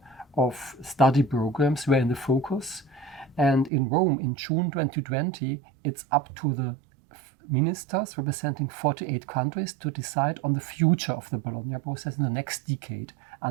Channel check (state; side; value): drops out; left; at 3.7 s